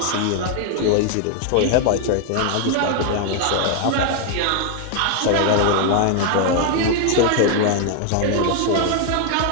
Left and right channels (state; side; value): different; both; correlation 0.00